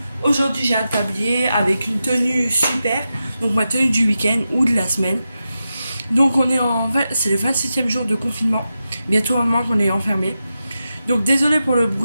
Aujourd'hui, j'ai un tablier avec une tenue super, donc ma tenue du week-end ou de la semaine. Donc c'est le 27e jour de confinement, bientôt un mois qu'on est enfermé. Donc désolé pour le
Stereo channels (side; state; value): both; inverted; correlation -0.90